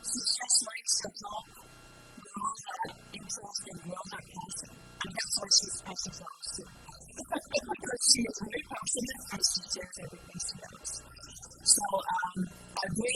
She just likes to help grow that interest and grow that passion. I mean, that's why she's Passion Flower Sue, because she is very passionate and she shares everything she knows. So a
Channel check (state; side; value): identical; both; correlation 1.00